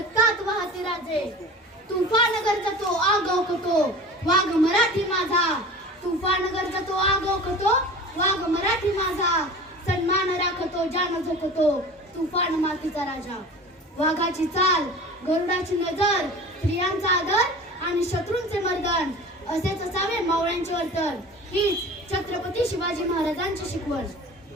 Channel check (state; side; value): normal; both; correlation 0.38